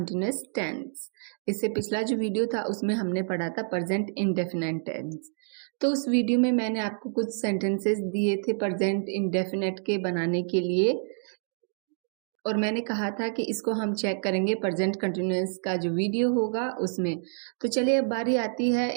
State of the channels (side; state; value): left; silent; digital silence